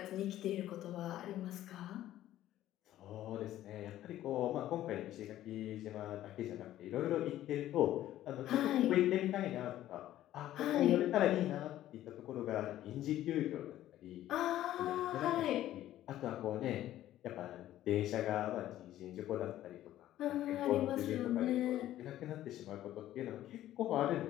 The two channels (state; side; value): quieter; right; 13.4 dB